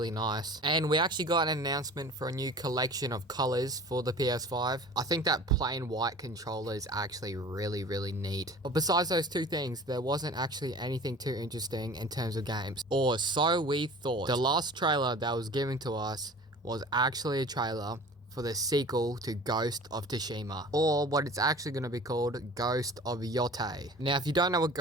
nice. And we actually got an announcement for a new collection of colors for the PS5. I think that plain white controller is actually really neat. But besides those two things, there wasn't actually anything too interesting in terms of games. Or so we thought. The last trailer that was given to us was actually a trailer for the sequel to Ghost of Tsushima, or what it's actually going to be called, Ghost of Yotei. Now, if you don't know what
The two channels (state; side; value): normal; both; correlation 0.42